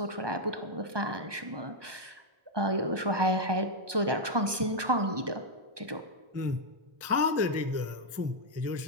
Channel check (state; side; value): late; left; 1.2 ms